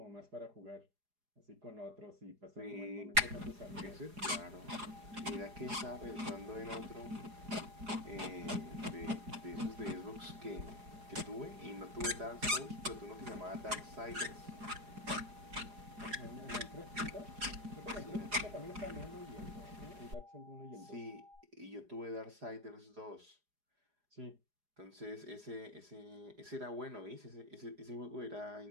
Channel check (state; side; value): late; left; 4.8 ms